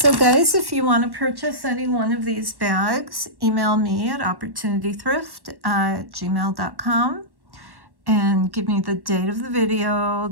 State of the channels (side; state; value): left; late; 1.1 ms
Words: guys, if you want to purchase any one of these bags, email me at opportunitythrift@gmail.com and give me the date of the